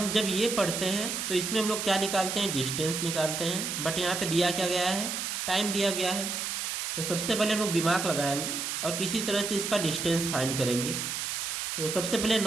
जब ये पढ़ते हैं तो इसमें हम लोग क्या निकालते हैं? डिस्टेंस निकालते हैं, बट यहाँ पे दिया क्या गया है? टाइम दिया गया है। तो सबसे पहले हम लोग दिमाग लगाएंगे और किसी तरह से इसका डिस्टेंस फाइंड करेंगे। तो सबसे पहले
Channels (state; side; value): noise; right; hiss, 3 dB below the sound